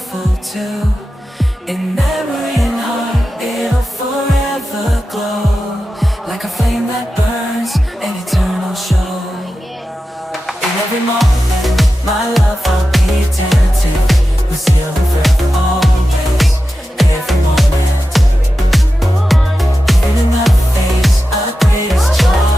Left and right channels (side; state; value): both; normal; correlation 0.92